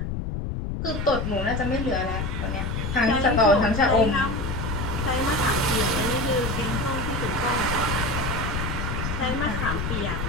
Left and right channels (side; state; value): left; noise; rumble, 3 dB below the sound